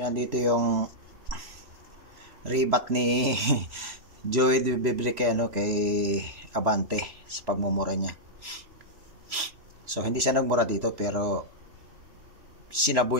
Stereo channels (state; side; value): late; left; 3.0 ms